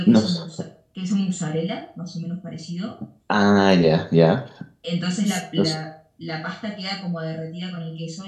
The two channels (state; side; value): identical; both; correlation 1.00